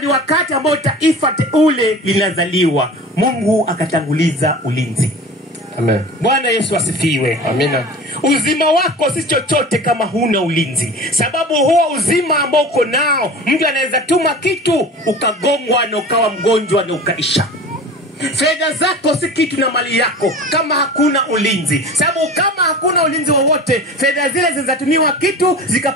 wakati ambao taifa teule linazaliwa. Mungu akatanguliza ulinzi. Amen. Bwana Yesu asifiwe. Amina. Uzima wako si chochote kama huna ulinzi. Sababu huo uzima ambao uko nao, mtu anaweza tuma kitu ukagongwa na ukawa mgonjwa na ukaisha. Fedha zako si kitu na mali yako kama hakuna ulinzi. Sababu kama hakuna ulinzi wowote, fedha zile zinatumiwa kitu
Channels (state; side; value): normal; both; correlation 0.37